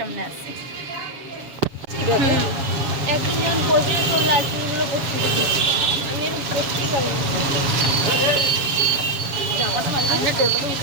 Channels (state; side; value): late; left; 7.2 ms